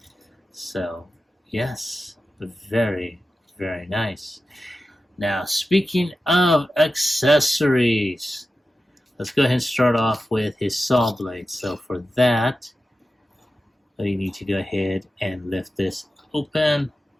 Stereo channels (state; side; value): normal; both; correlation 0.92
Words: So, yes, very, very nice. Now, speaking of accessories, let's go ahead and start off with his saw blade. So for that, you need to go ahead and lift this open.